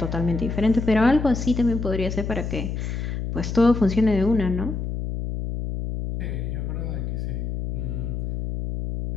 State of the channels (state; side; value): noise; left; hum, 4 dB below the sound